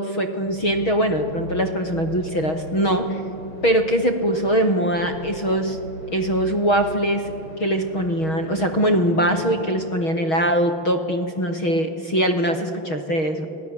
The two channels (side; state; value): right; late; 6.3 ms